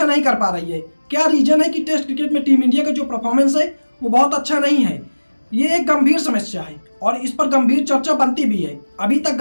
नहीं कर पा रही है? क्या रीजन है कि टेस्ट क्रिकेट में टीम इंडिया का जो परफॉर्मेंस है वो बहुत अच्छा नहीं है? ये एक गंभीर समस्या है और इस पर गंभीर चर्चा बनती भी है। अभी तक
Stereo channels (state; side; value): inverted; both; correlation -1.00